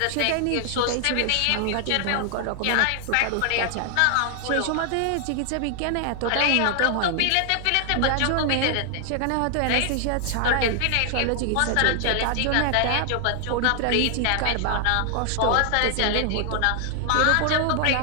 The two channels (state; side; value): different; both; correlation 0.00